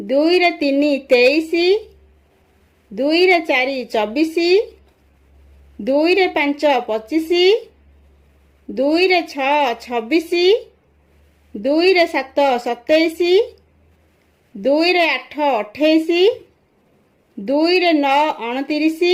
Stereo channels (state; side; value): identical; both; correlation 1.00